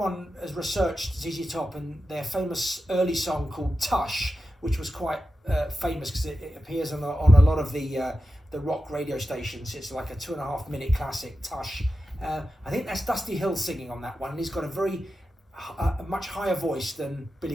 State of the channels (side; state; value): both; normal; correlation 0.92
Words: has researched ZZ Top and their famous early song called Tush, which was quite famous because it appears on a lot of the rock radio stations. It's like a 2.5 minute classic, Tush. I think that's Dusty Hill singing on that one, and he's got a much higher voice than